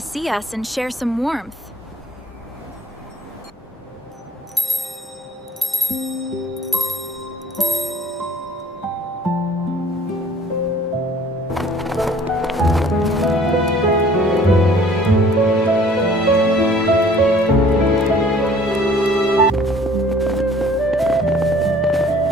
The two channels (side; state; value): both; normal; correlation 0.54